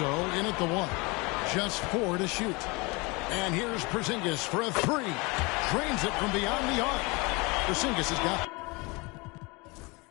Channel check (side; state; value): right; quieter; 26.7 dB